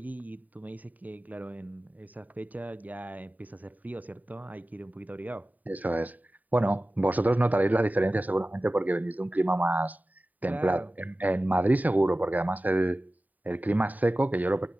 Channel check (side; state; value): left; late; 0.079 ms